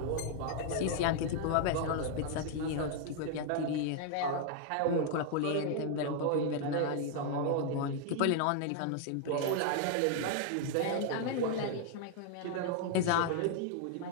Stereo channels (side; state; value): both; different; correlation 0.00